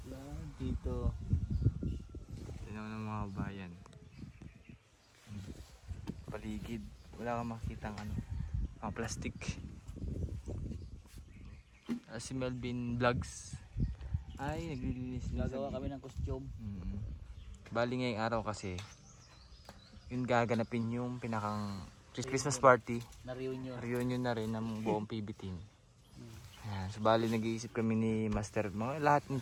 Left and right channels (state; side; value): identical; both; correlation 1.00